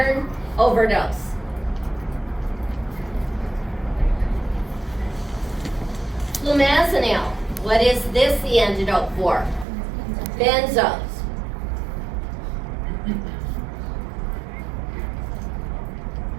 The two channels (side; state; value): left; drops out; at 9.7 s